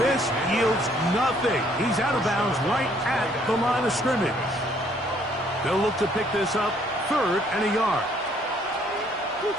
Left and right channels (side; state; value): both; normal; correlation 0.64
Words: yields nothing. He's out of bounds right at the line of scrimmage. They'll look to pick this up, 3rd and a yard.